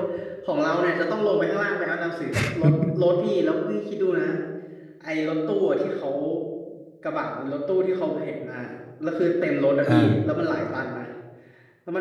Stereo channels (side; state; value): both; identical; correlation 1.00